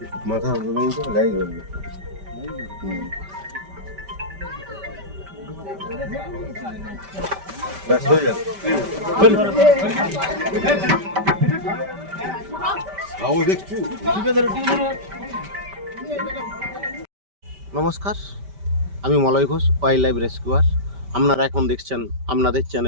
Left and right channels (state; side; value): late; left; 5.1 ms